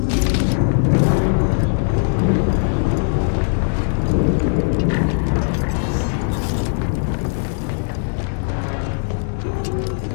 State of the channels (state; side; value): silent; right; digital silence